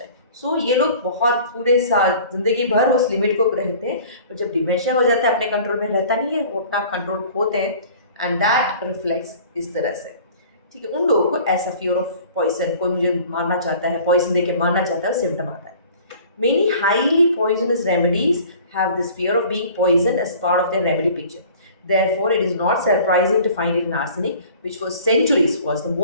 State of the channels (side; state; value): both; inverted; correlation -0.47